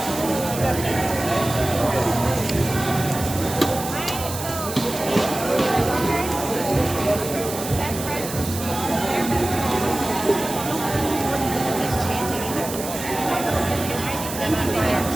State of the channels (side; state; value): right; noise; hiss, 9 dB below the sound